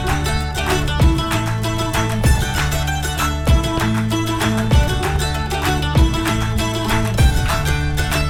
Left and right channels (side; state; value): both; identical; correlation 1.00